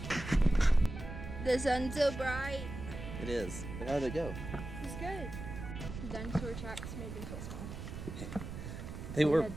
The sun's so bright. It is. But how did it go? It's good. The dinosaur tracks made me feel small. They were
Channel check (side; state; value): right; noise; rumble, 8 dB below the sound